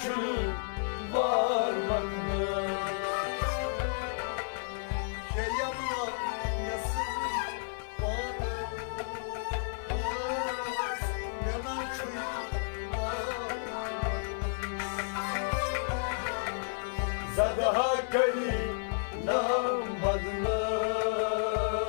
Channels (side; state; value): right; silent; digital silence